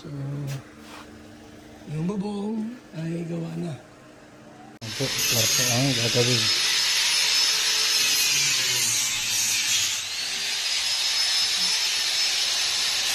yung bubong ay gawa na. Ito, kwarto ang gagawin.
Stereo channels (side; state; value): both; identical; correlation 1.00